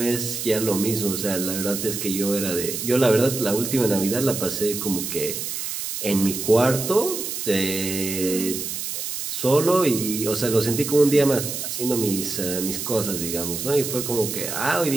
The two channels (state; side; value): noise; right; hiss, 5 dB below the sound